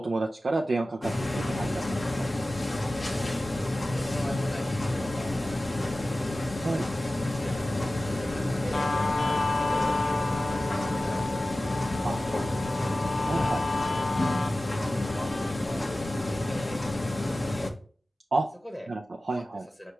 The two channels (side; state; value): both; normal; correlation 0.96